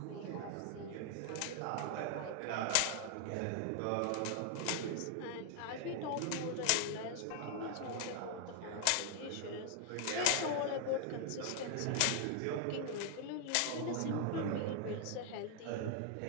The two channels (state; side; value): different; both; correlation 0.00